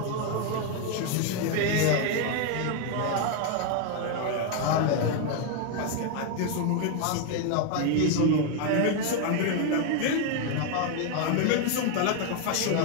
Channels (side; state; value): both; different; correlation 0.01